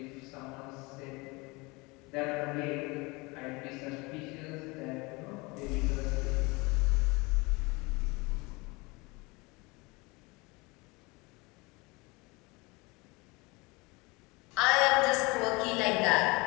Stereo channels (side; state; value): right; quieter; 25.4 dB